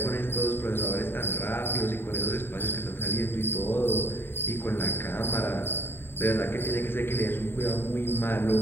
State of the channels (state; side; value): late; right; 0.11 ms